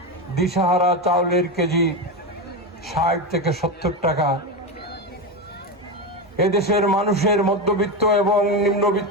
দিশাহারা। চাউলের কেজি 60 থেকে 70 টাকা। এদেশের মানুষের মধ্যবিত্ত এবং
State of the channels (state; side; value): normal; both; correlation 0.15